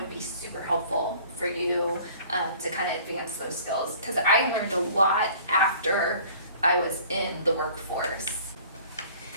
be super helpful for you to kind of advance those skills. Because I learned a lot after I was in the workforce.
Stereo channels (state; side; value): inverted; both; correlation -0.50